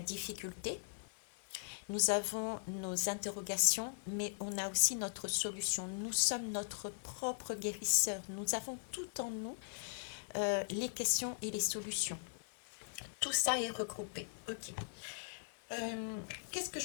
nous avons nos interrogations, mais on a aussi notre solution. Nous sommes notre propre guérisseur. Nous avons tout en nous, les questions et les solutions. Tout ça est regroupé. Ok. Qu'est-ce que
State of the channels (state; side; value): silent; right; 51 dB below the other